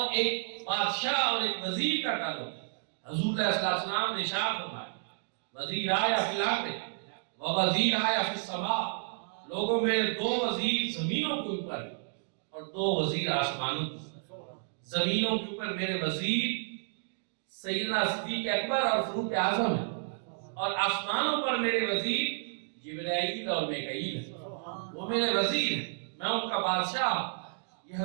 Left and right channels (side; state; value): left; silent; digital silence